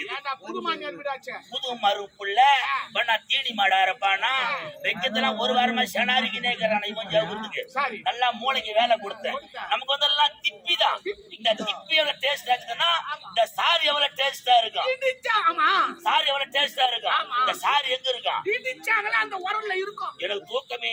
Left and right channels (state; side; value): identical; both; correlation 1.00